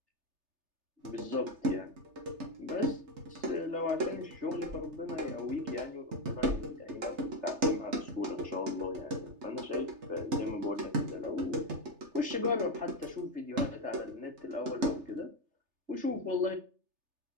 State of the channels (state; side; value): late; left; 3.3 ms